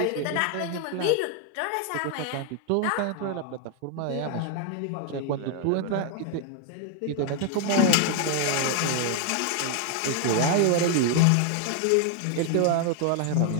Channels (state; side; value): different; both; correlation 0.00